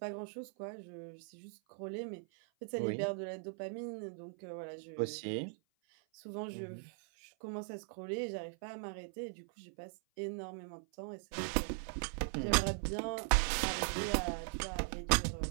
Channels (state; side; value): silent; left; 51 dB below the other